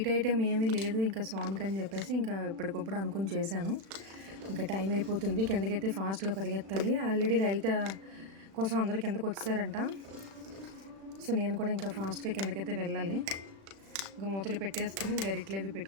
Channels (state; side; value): late; left; 36 ms